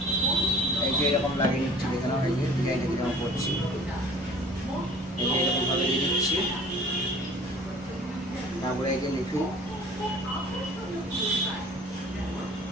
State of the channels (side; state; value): both; normal; correlation 0.48